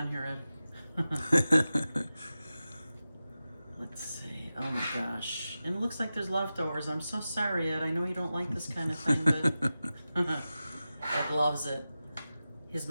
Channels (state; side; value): inverted; both; correlation -0.94